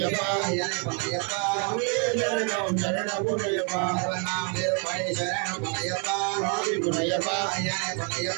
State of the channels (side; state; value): left; quieter; 39.4 dB